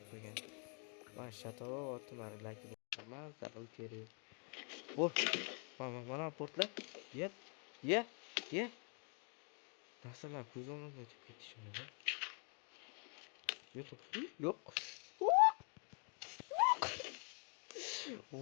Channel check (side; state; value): right; quieter; 39.1 dB